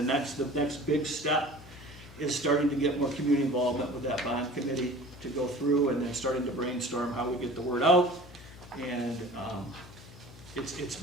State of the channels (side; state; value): left; noise; hum, 19 dB below the sound